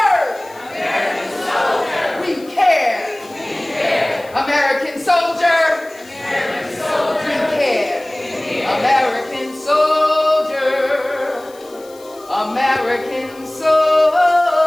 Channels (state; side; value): noise; left; hiss, 24 dB below the sound